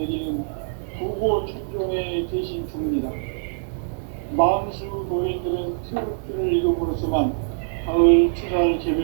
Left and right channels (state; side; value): silent; left; digital silence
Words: 부고천존의 대신 주문이다. 만수 도인들은 태극주를 읽음으로써만 가을 추살